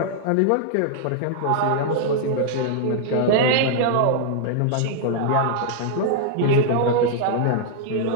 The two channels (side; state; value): both; different; correlation -0.01